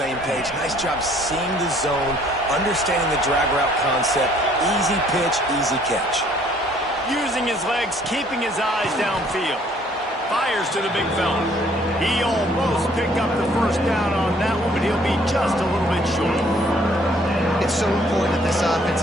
page. Nice job seeing the zone, understanding the drag route concept. Easy pitch, easy catch. Using his legs, keeping his eyes downfield. Fires to the big fella. He almost picked up the first down on that one, but he'll be just a little bit short. It's so important that this offense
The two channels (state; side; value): normal; both; correlation 0.61